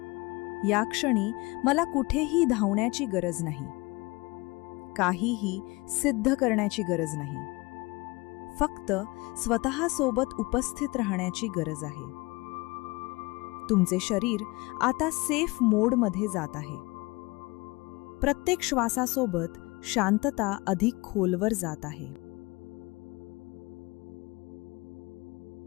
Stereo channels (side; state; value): right; quieter; 24.1 dB